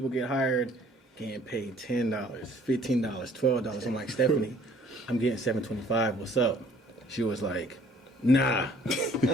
get hired, getting paid $10, $15, $12. I'm like, Stephanie, I'm getting $725. What's up? She was like, nah. I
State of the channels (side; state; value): both; normal; correlation 0.57